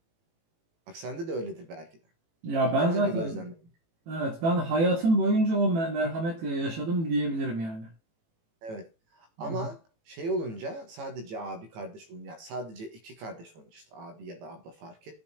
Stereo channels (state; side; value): late; left; 18 ms